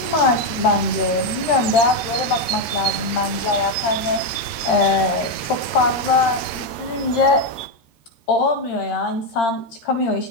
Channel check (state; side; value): late; right; 13 ms